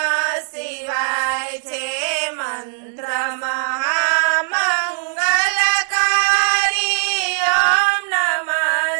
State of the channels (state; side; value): silent; left; 66 dB below the other